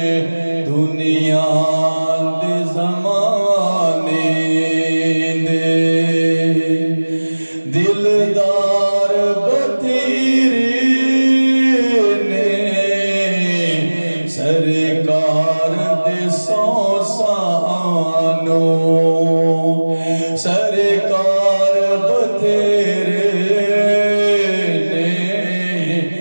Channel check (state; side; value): inverted; both; correlation -1.00